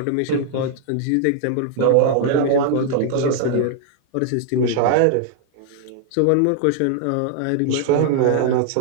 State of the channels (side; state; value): both; different; correlation 0.00